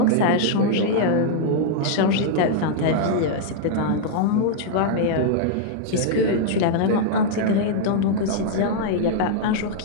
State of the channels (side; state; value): both; different; correlation -0.01